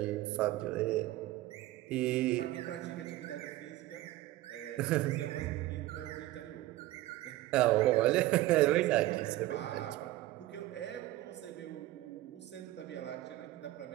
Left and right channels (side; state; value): left; quieter; 16.6 dB